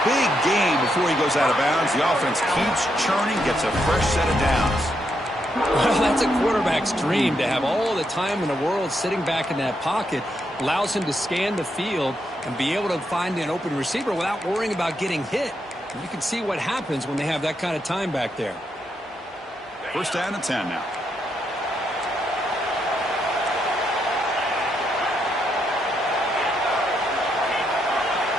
big gain before he goes out of bounds. The offense keeps churning, gets a fresh set of downs. Well, that's a quarterback's dream, to have all the time in the world sitting back in that pocket. Allows him to scan the field and be able to find an open receiver without worrying about getting hit. And you can see what happens when they have that kind of time back there. First down and 10 now.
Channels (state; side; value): normal; both; correlation 0.79